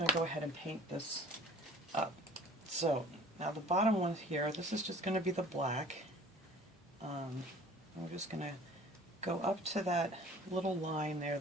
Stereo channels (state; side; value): normal; both; correlation 0.48